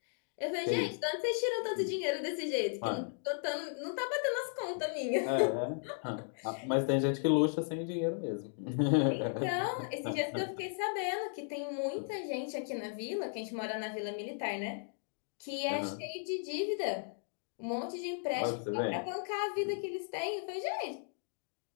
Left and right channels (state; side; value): silent; right; digital silence